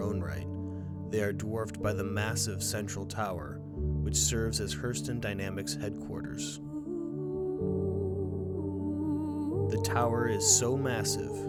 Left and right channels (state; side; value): identical; both; correlation 1.00